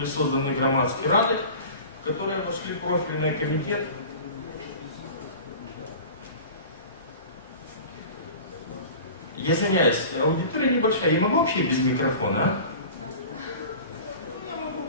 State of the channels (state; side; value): inverted; both; correlation -0.38